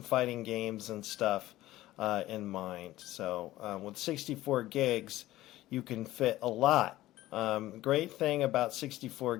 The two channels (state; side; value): quieter; right; 15.9 dB